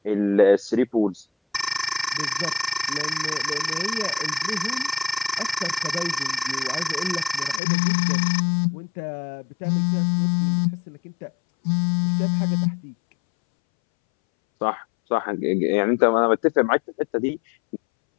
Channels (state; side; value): drops out; right; at 7.6 s